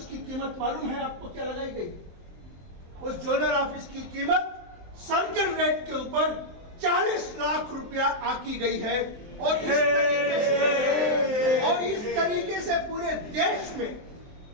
की कीमत मालूम है आपको क्या लगाई गई? उस जोनल ऑफिस की कीमत सर्किल रेट के ऊपर 40 लाख रुपया आकी गई है। और इस तरीके से पूरे देश में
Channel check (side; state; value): left; late; 23 ms